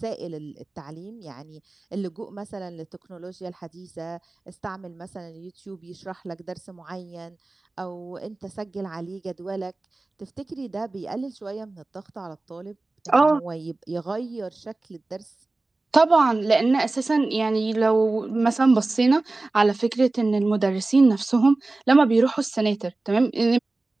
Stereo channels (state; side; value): quieter; left; 3.2 dB